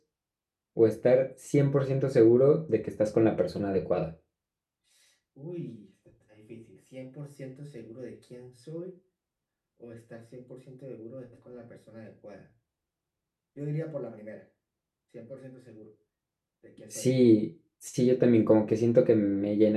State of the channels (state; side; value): identical; both; correlation 1.00